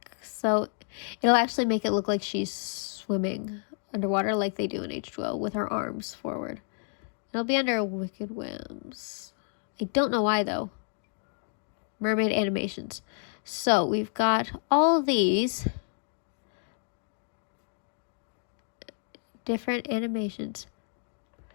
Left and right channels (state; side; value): silent; right; 55 dB below the other